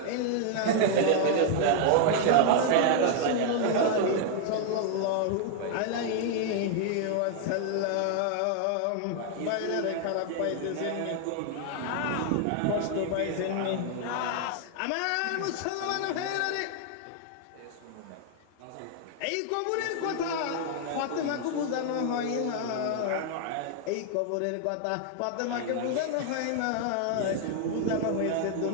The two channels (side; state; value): both; different; correlation 0.00